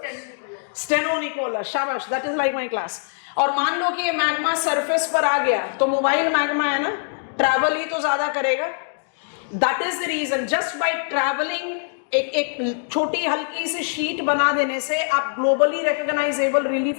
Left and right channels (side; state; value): right; silent; digital silence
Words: स्टेनो निकोला, शाबाश, that is like my class. और मान लो कि ये मैग्मा सरफेस पर आ गया तो मोबाइल मैग्मा है ना, ट्रैवल ही तो ज्यादा करेगा। That is the reason, just by travelling एक छोटी हल्की सी शीट बना देने से आप ग्लोबली रिकॉग्नाइजेबल